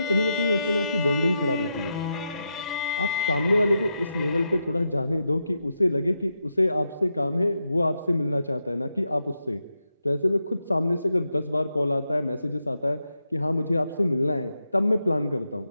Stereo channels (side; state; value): both; inverted; correlation -0.85